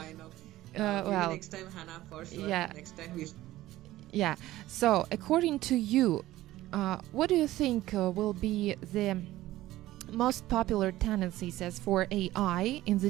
Well, next time, Hannah, for sure. Yeah. Next time we. Yeah. So, according to you, what do you think will be the most popular tendencies as for AI in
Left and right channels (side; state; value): left; quieter; 15.9 dB